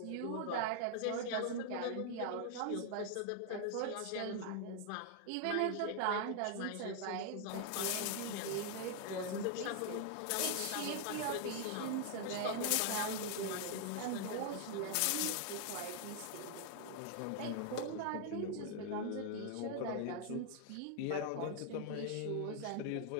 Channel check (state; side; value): different; both; correlation 0.00